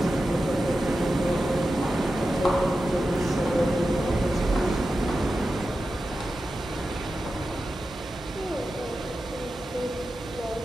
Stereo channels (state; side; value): normal; both; correlation 0.92